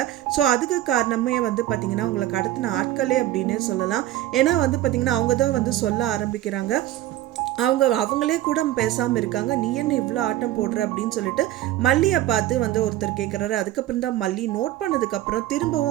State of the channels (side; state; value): left; quieter; 14.3 dB